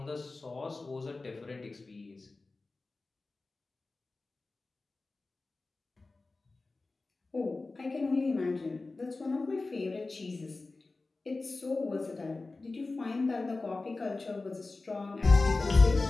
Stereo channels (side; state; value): right; quieter; 3.5 dB